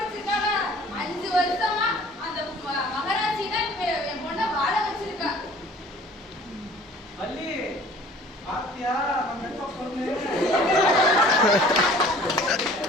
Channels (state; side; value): normal; both; correlation 0.50